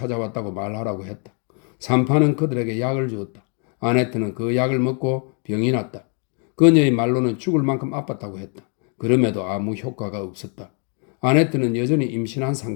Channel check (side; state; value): right; quieter; 39.6 dB